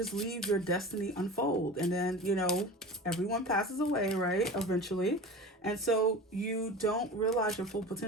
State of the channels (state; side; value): normal; both; correlation 0.34